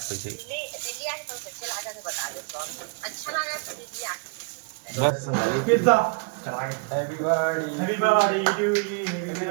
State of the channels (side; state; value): left; quieter; 34.9 dB